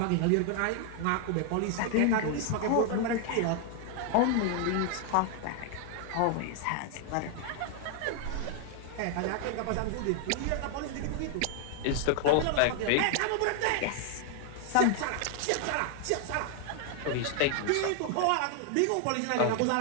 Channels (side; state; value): both; different; correlation 0.00